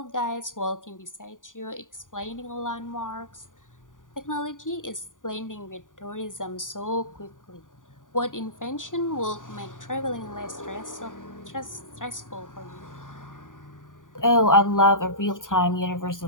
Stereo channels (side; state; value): right; late; 0.88 ms